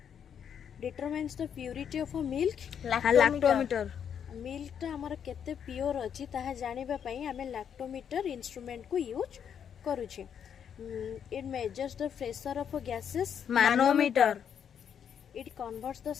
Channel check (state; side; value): quieter; right; 8.2 dB